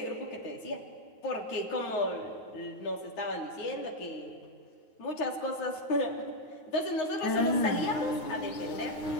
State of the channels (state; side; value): late; right; 9.4 ms